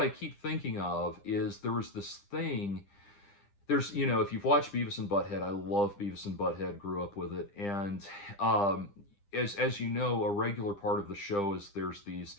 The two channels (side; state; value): right; late; 9.9 ms